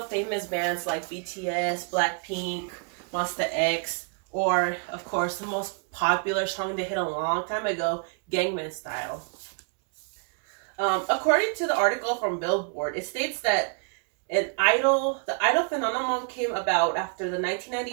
famous bands like BTS, Blackpink, Monsta X, or, of course, the most popular song they hit a long time ago, Gangnam Style. According to the article from Billboard, it states that the idol phenomenon came about after the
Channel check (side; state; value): left; quieter; 39.1 dB